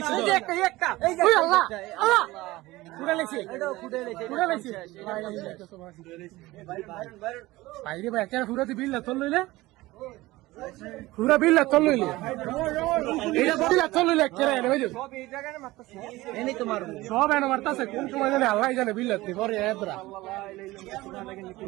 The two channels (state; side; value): quieter; left; 19.0 dB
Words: এই যে একটা এই যে আল্লাহ আল্লাহ ফুটে লাগছে এটাও ফুটে লাগছে বাইরে ভাই একটা ফুরাতে বিল্লা চল লইলে পুরা বিল্লা চল লইলে এইটা বিল্লা চল লইলে কেরে এনে বুঝছো সব এই জায়গায় মারতাছে এনে তো মারবো সব এনে মারতাছে কোন সময় জানে আল্লাহ জানে বিল্লাতে পরে এদরা